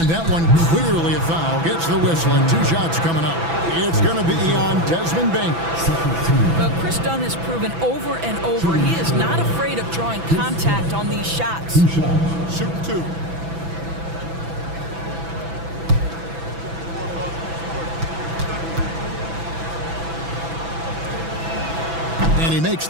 that one clearly a foul. Gets the whistle and 2 shots coming up. It's going to be on Desmond Bane. Well, Chris Dunn has proven over and over he is not afraid of drawing contact on these shots. Shoot 2. And he makes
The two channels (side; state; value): left; late; 6.0 ms